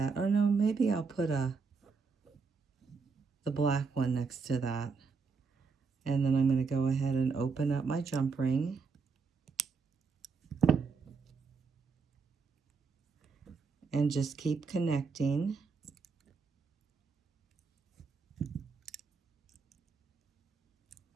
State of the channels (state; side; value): quieter; left; 5.0 dB